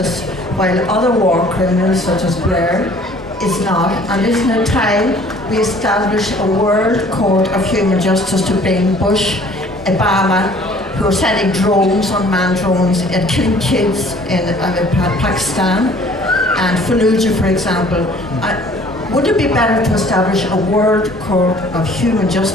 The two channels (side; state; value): both; normal; correlation 0.53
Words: while other war criminals, such as Blair, is not? And isn't it time we establish a World Court of Human Justice to bring Bush, Obama, who are sending drones, unmanned drones, and killing kids in Pakistan, and Fallujah, for example? Would it be better to establish a World Court of Human